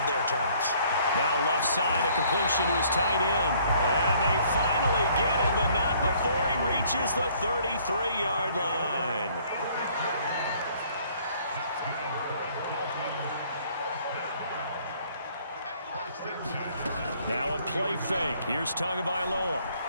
their terms. Now left side, a completion to his tight end. And they finally get him, but not before he reaches the 33-yard line. Now a play fake. Here's Tagovailoa.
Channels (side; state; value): both; inverted; correlation -0.61